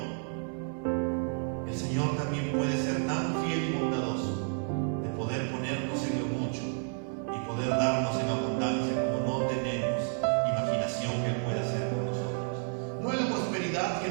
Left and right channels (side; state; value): left; silent; 57 dB below the other